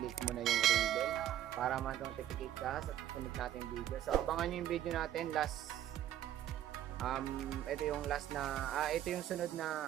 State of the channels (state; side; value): quieter; left; 11.8 dB